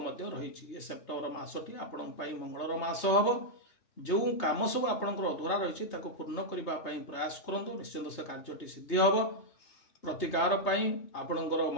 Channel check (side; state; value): right; late; 3.3 ms